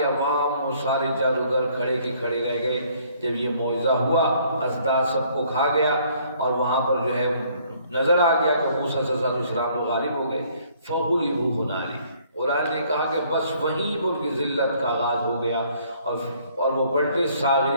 عوام، وہ سارے جادوگر کھڑے کے کھڑے رہ گئے. جب یہ معجزہ ہوا ازداد سب کو کھا گیا اور وہاں پر جو ہے نظر آ گیا کہ موسیٰ علیہ السلام غالب ہو گئے. فغلبوا ہنالک، قرآن نے کہا کہ بس وہیں پر ان کی ذلت کا آغاز ہو گیا اور وہ پلٹے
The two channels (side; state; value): both; inverted; correlation -0.62